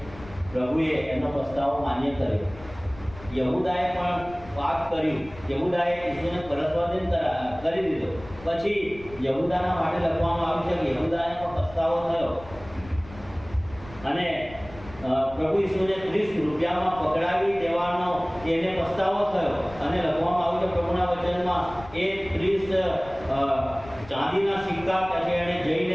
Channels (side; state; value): left; noise; rumble, 18 dB below the sound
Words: પ્રભુએ એનો પસ્તાવો માન્ય કર્યો. યહૂદાએ પણ પાપ કર્યું, યહૂદાએ ઈસુને પરસ્વાધીન કરી દીધો. પછી યહૂદાના માટે લખવામાં આવ્યું છે કે યહૂદાને પણ પસ્તાવો થયો અને પ્રભુ ઈસુને 30 રૂપિયામાં પકડાવી દેવાનો એને પસ્તાવો થયો અને લખવામાં આવ્યું છે પ્રભુના વચનમાં એ 30 ચાંદીના સિક્કા કે એને